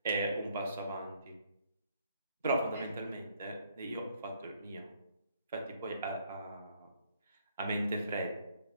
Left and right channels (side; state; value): both; inverted; correlation -0.67